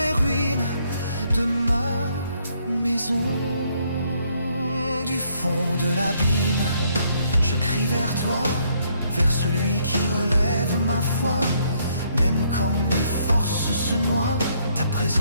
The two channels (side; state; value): both; inverted; correlation -0.69